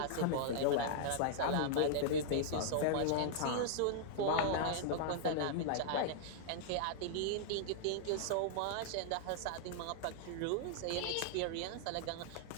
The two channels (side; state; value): both; different; correlation -0.01